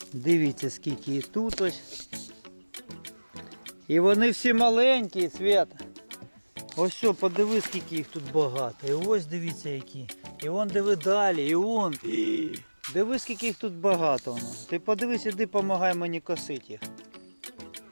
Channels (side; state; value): both; inverted; correlation -1.00